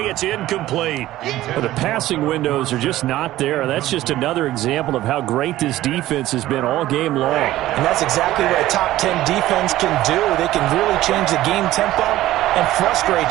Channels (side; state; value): left; quieter; 15.2 dB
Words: it's incomplete. Well, the passing windows are just not there. That's just another example of how great this defense has been all game long. And that's exactly what a top 10 defense can do. They can really change the game tempo and